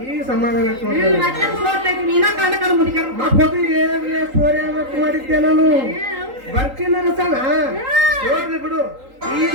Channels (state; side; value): late; left; 3.8 ms